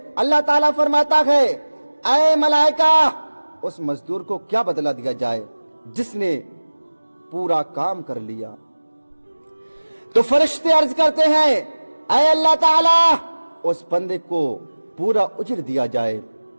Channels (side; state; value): both; inverted; correlation -1.00